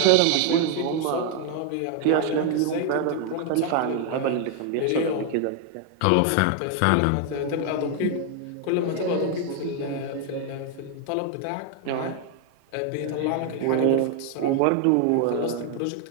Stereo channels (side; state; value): both; different; correlation 0.00